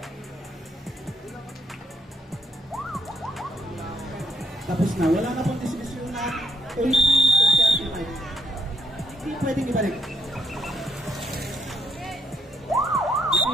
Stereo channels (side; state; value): both; normal; correlation 0.72